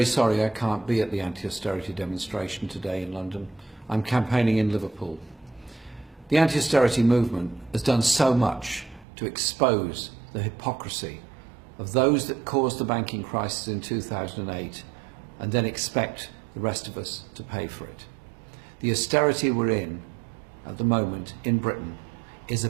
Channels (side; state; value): left; drops out; at 9.1 s